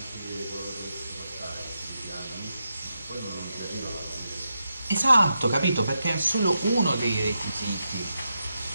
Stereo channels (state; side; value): inverted; both; correlation -0.86